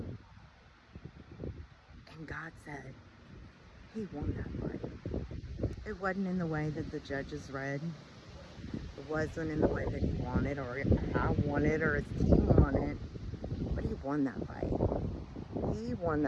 And God said, he won that fight. It wasn't in the way that the judges read. It wasn't in the way that he wanted, or I wanted, or his team wanted. But he he won that fight. He won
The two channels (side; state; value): both; identical; correlation 1.00